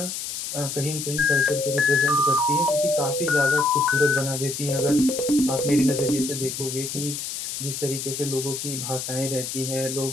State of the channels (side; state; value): left; noise; hiss, 5 dB below the sound